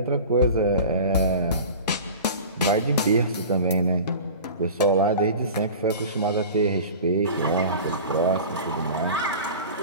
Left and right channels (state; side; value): inverted; both; correlation -0.36